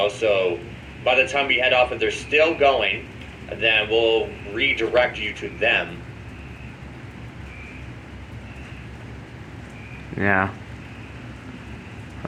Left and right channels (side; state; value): both; identical; correlation 1.00